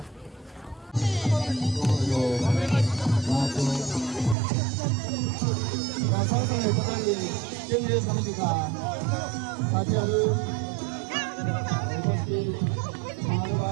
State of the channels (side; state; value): left; drops out; at 4.4 s